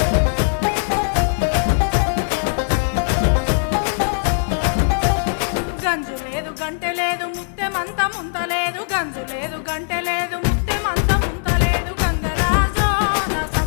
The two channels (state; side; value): silent; right; digital silence